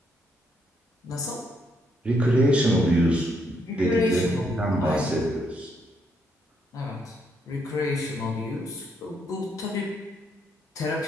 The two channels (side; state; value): both; normal; correlation 0.74